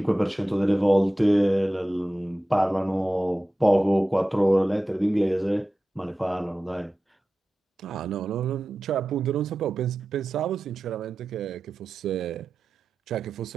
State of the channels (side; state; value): both; normal; correlation 0.94